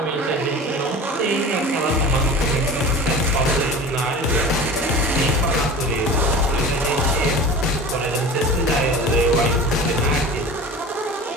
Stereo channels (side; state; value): both; normal; correlation 0.36